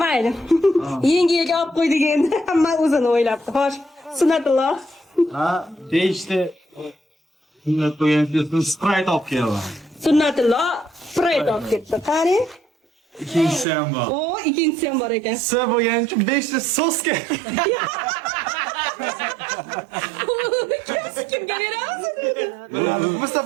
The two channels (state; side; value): drops out; left; at 13.7 s